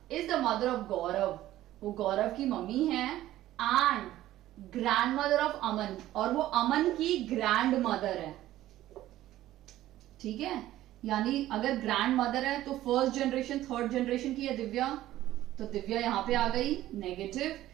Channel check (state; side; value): quieter; left; 14.3 dB